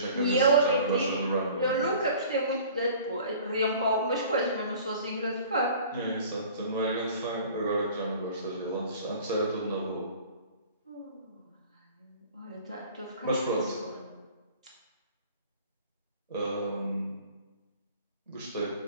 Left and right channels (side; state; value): both; inverted; correlation -0.46